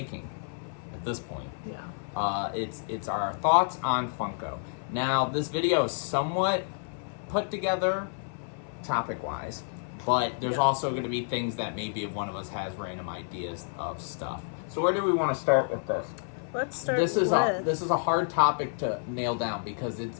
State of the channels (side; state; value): right; silent; 58 dB below the other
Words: at this point. Yeah. It's our thoughts on Funko. Now, this video is somewhat put together topic-wise, but there's also going to be things that maybe if one of us has random ideas of stuff. So where do we want to start with this? Let's start This is a hard topic to nail down because it's